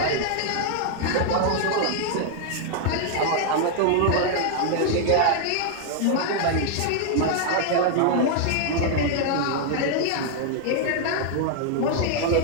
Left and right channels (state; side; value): different; both; correlation 0.00